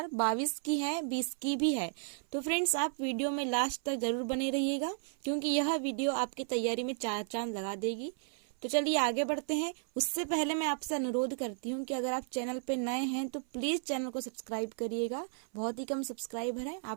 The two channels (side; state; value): left; silent; 55 dB below the other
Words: की है, 20 की भी है। तो फ्रेंड्स, आप वीडियो में लास्ट तक जरूर बने रहिएगा क्योंकि यह वीडियो आपकी तैयारी में चार चांद लगा देगी। तो चलिए आगे बढ़ते हैं। उससे पहले मैं आपसे अनुरोध करती हूँ कि अगर आप चैनल पे नए हैं तो प्लीज़ चैनल को सब्सक्राइब करिएगा। बहुत ही कम सब्सक्राइबर है,